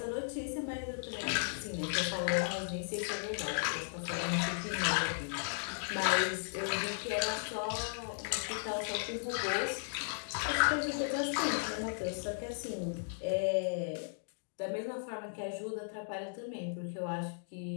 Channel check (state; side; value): silent; right; digital silence